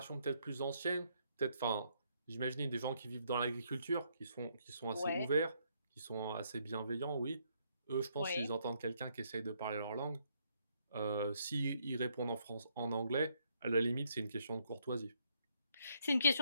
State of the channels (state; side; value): inverted; both; correlation -0.72